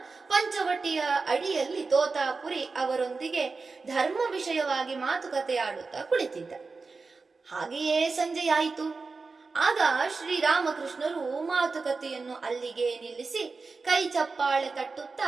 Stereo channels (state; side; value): quieter; left; 4.2 dB